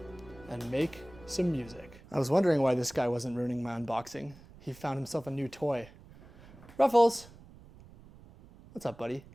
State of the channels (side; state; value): right; noise; rumble, 22 dB below the sound